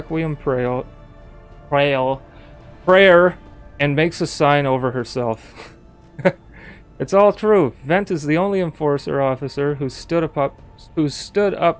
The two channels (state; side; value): identical; both; correlation 1.00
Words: prayer and makes a sign over herself. It's all true. Vent is the only enforcer officer who stood